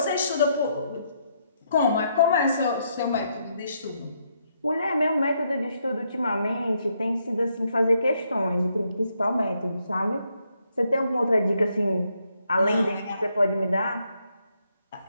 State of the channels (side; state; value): both; inverted; correlation -0.76